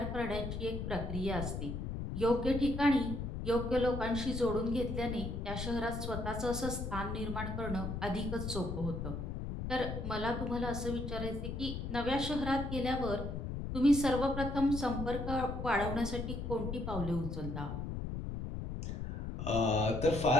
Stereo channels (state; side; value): noise; left; rumble, 4 dB below the sound